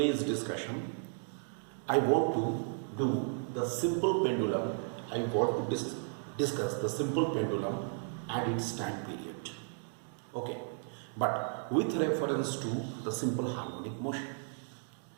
discussion, I want to do the simple pendulum. I want to discuss the simple pendulum and its time period. Okay, but with reference to the simple harmonic motion.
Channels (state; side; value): silent; left; 55 dB below the other